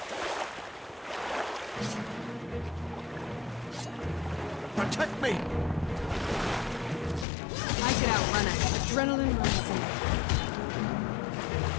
Protect me! I could outrun it. Adrenaline rising.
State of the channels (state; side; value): drops out; right; at 7.2 s